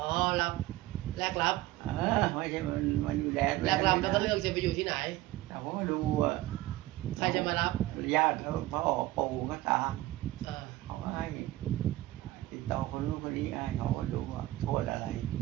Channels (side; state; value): left; quieter; 17.0 dB